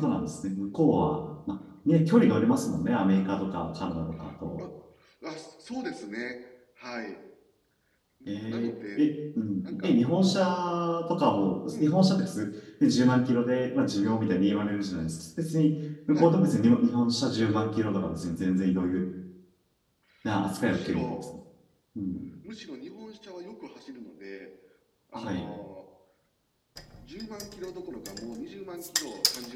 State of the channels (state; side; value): identical; both; correlation 1.00